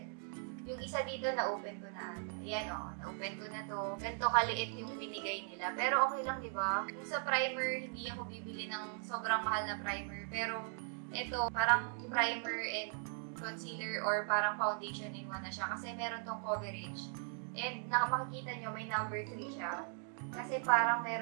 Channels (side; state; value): left; silent; 52 dB below the other